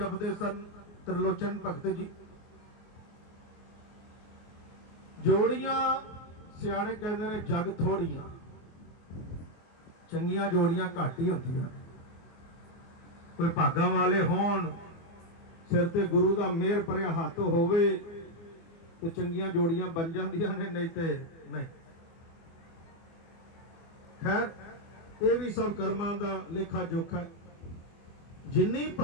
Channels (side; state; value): right; late; 24 ms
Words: सन त्रिलोचन भगत जी। जोड़ियां सियाणे कहते ने जग थोड़ियां, चंगियां जोड़ियां घट ही होंदियां। कोई भागा वाले होण, सिर ते गुरु दा मेहर भरिया हत्थ होवे तो चंगियां जोड़ियां बन जांदियां ने, नहीं ते नहीं। खैर ये भी सब कर्मां दा लेखा जोखा है। जिन्नी